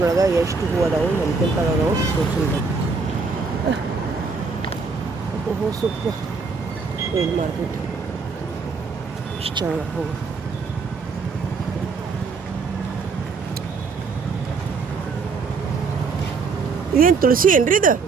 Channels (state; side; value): quieter; left; 4.7 dB